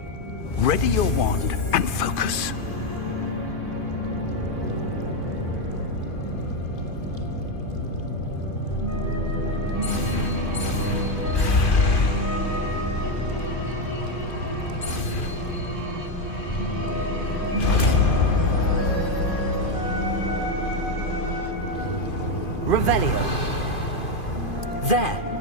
Ready your wand and focus. Revelio. There!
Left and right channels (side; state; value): right; late; 2.5 ms